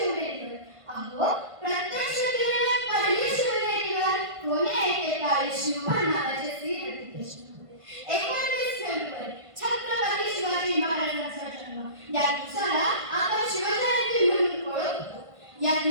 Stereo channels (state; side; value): late; left; 1.5 ms